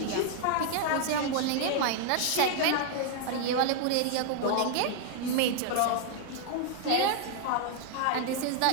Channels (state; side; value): different; both; correlation 0.00